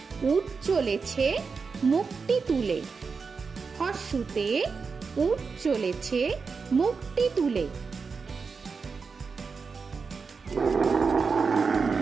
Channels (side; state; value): left; quieter; 5.0 dB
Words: উট চলেছে মুখটি তুলে। হর্ষুতে উট চলেছে মুখটি তুলে।